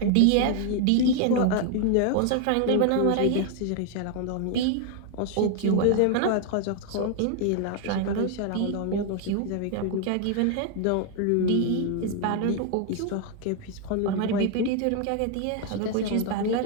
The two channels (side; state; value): both; different; correlation 0.00